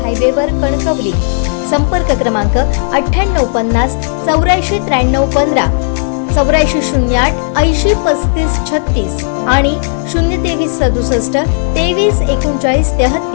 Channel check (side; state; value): right; silent; digital silence